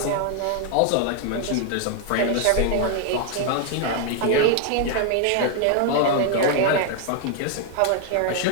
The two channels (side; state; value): both; different; correlation 0.00